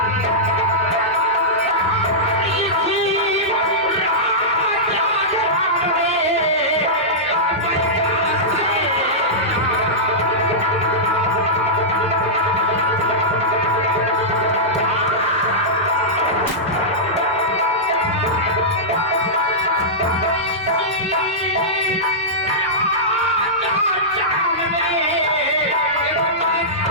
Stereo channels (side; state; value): both; normal; correlation -0.13